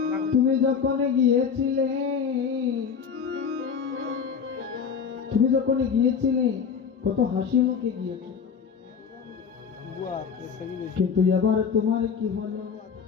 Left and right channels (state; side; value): quieter; right; 6.5 dB